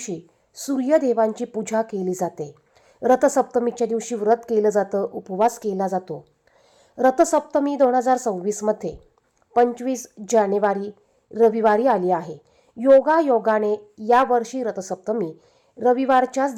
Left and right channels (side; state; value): both; identical; correlation 1.00